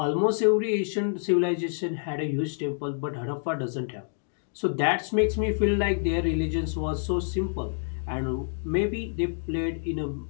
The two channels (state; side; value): silent; right; digital silence